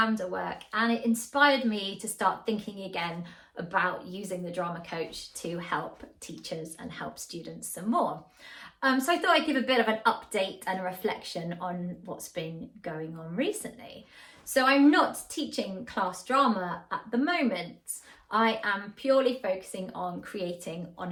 work, and it inspired me to start thinking again about using the drama coach to help teachers and help students some more. So I thought I'd give a bit of an update and a reflection on what's been going on recently. So I'm not teaching class drama at the moment. I am purely focusing on creating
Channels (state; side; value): identical; both; correlation 1.00